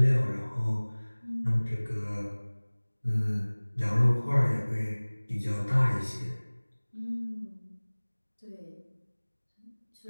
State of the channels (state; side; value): inverted; both; correlation -1.00